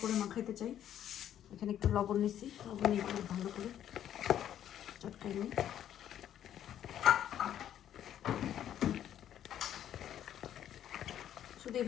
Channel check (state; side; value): quieter; right; 10.7 dB